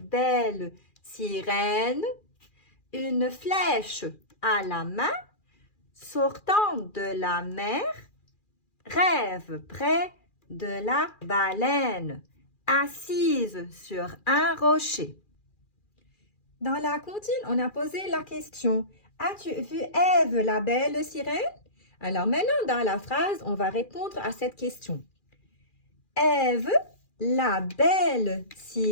sirène? Une flèche à la main, sortant de la mer, rêve près de la baleine, assise sur un rocher. Dans la comptine, on a posé la question « As-tu vu Ève, la belle sirène ?» Alors maintenant, dans la phrase, on va répondre à cette question. Ève, la belle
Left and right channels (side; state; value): right; late; 2.4 ms